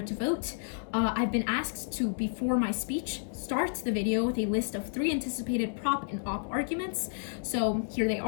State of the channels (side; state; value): right; silent; digital silence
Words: to vote. I've been asked to, before my speech, start the video with a list of 3 anticipated prop and op arguments. So here they